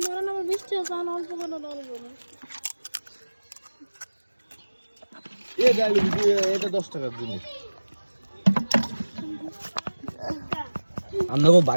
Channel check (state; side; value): inverted; both; correlation -1.00